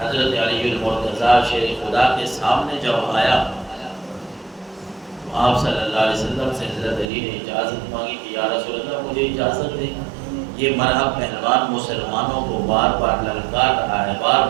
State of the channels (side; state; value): left; drops out; at 7.1 s